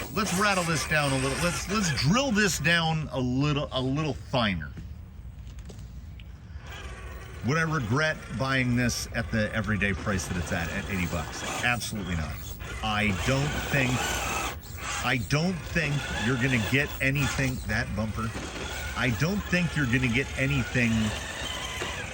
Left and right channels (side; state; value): both; identical; correlation 1.00